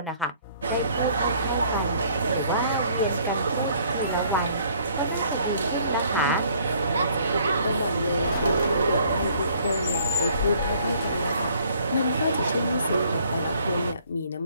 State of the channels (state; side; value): inverted; both; correlation -0.60